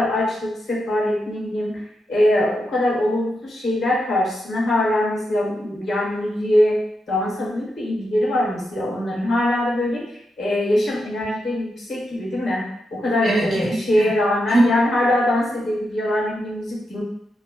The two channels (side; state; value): both; normal; correlation 0.85